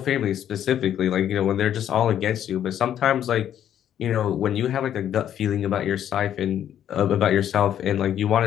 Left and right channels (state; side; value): quieter; right; 10.3 dB